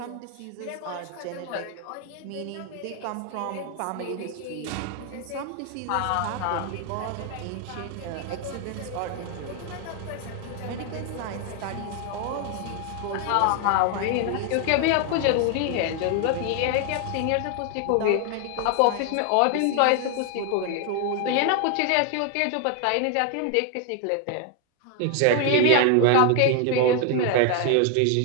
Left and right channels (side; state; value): both; different; correlation 0.01